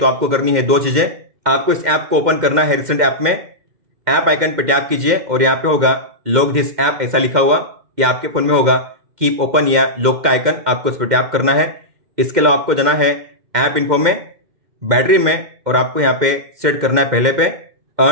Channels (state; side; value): late; left; 2.1 ms